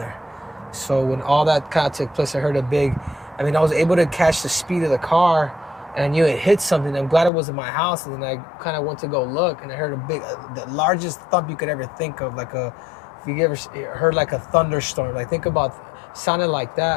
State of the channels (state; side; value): drops out; right; at 7.3 s